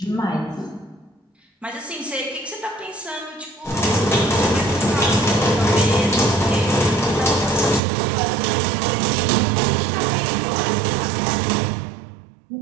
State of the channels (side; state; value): left; drops out; at 7.8 s